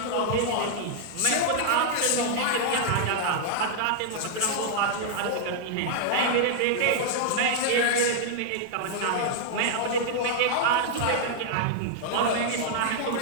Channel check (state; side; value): different; both; correlation -0.01